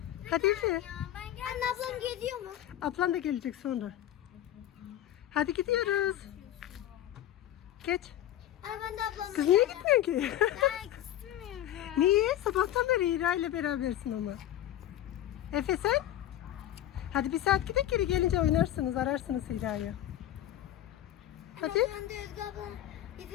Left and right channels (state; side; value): quieter; right; 12.4 dB